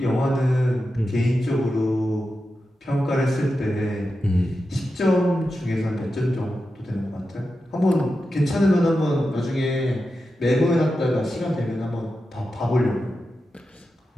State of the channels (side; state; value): both; normal; correlation 0.90